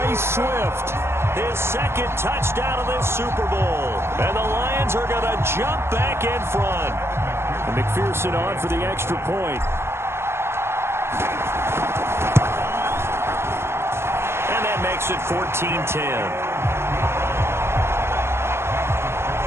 Swift, his second touchdown of this Super Bowl. And the Lions are going to jump back in front. And McPherson on for the extra point. And that makes it 14-10.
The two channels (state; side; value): late; left; 0.12 ms